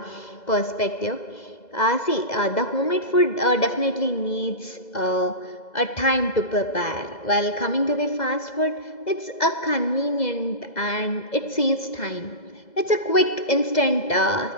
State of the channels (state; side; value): late; right; 2.0 ms